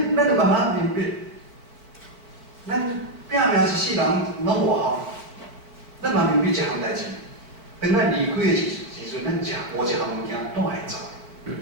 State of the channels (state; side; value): late; left; 4.5 ms